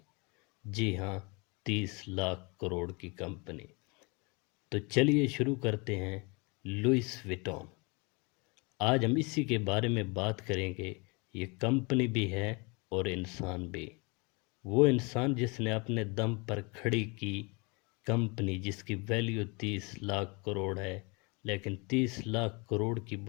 جی ہاں، 30 لاکھ کروڑ کی کمپنی۔ تو چلیے شروع کرتے ہیں۔ لوئس وٹون۔ آج ہم اسی کے بارے میں بات کریں گے۔ یہ کمپنی بھی ہے اور انسان بھی۔ وہ انسان جس نے اپنے دم پر کھڑی کی کمپنی، جس کی ویلیو 30 لاکھ کروڑ ہے، لیکن 30 لاکھ کروڑ کی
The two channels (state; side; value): quieter; right; 29.5 dB